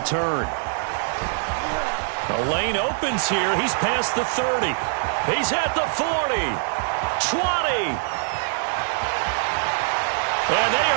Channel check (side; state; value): left; silent; digital silence